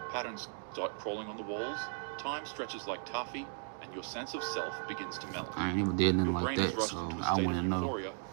patterns start crawling on the walls, time stretches like taffy, and your sense of self begins to melt. I ain't never did nothing your like brain is that, rushed so into a I state want to of know. euphoria,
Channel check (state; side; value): silent; left; digital silence